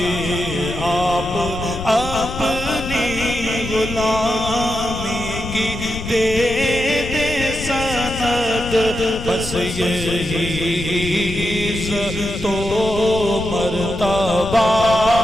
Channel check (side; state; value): left; noise; rumble, 8 dB below the sound